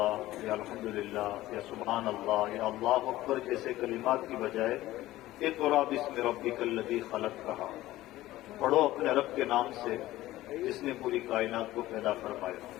یا الحمدللہ یا سبحان اللہ یا اللہ اکبر جیسے کلمات کی بجائے اقرأ باسم ربک الذی خلق کہا. پڑھو اپنے رب کے نام سے جس نے پوری کائنات کو پیدا فرمایا.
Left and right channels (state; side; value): quieter; right; 16.1 dB